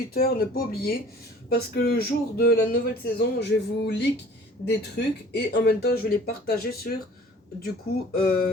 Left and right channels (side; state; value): both; normal; correlation 0.48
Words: ne pas oublier. Parce que le jour de la nouvelle saison, je vais vous leak des trucs. Et en même temps, je vais les partager sur, du coup,